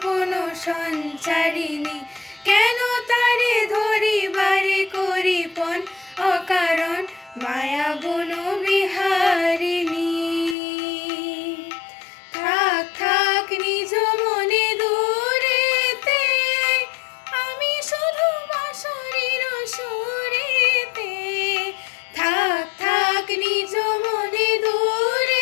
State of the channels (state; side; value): drops out; right; at 10.6 s